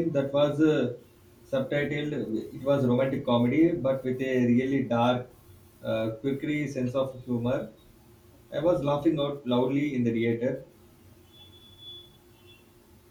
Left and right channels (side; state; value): both; identical; correlation 1.00